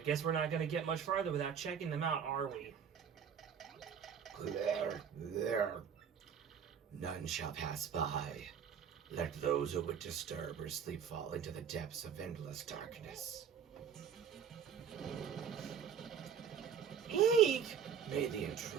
guess we're not going to get much farther without checking them out, are we? There. None shall pass by. Let those who would disturb or sleep fall into the depths of endless darkness. Eek! May the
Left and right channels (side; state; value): left; quieter; 7.7 dB